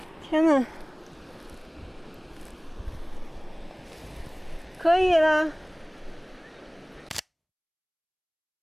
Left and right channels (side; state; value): both; identical; correlation 1.00